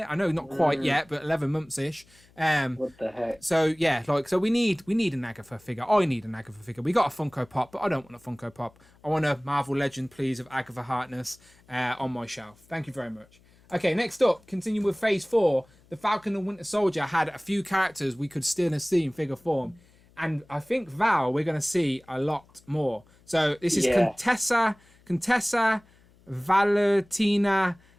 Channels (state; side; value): noise; left; hum, 29 dB below the sound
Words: I know not quite yet, but 11 months ish. What the heck? So yeah, so we need an Agatha figure. I need an Agatha figure. We got a Funko Pop, but I don't want a Funko Pop. I want a Marvel Legend, please, of Agatha Harkness on my shelf. Thank you very much. Okay, next up, continue with Phase 4. The Falcon and Winter Soldier had a few characters we could still see in figure form. And I think, Val, we're going to see a lot more. So this is Contessa Valentina